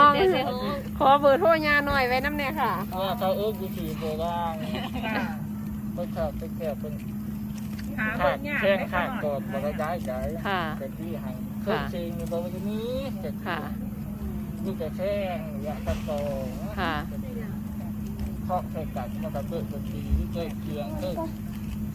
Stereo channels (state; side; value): identical; both; correlation 1.00